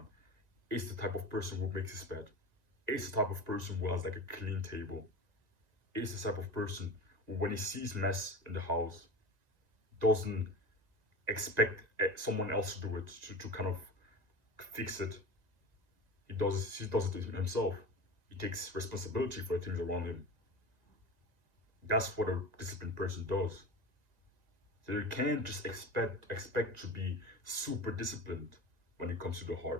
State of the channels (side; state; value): left; late; 1.9 ms